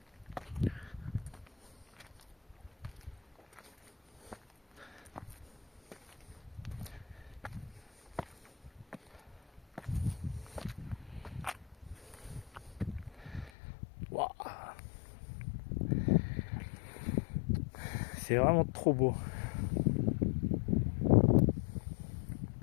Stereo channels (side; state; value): right; drops out; at 13.5 s